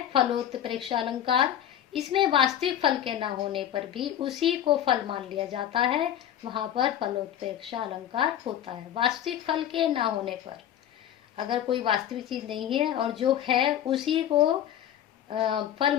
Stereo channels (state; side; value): quieter; right; 10.8 dB